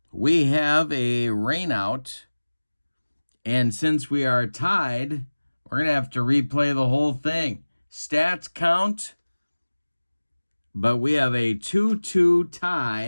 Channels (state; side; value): inverted; both; correlation -1.00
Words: we have a rain out, and since we are tied, we're going to have to replay the whole thing. Stats count, but we have a 2-2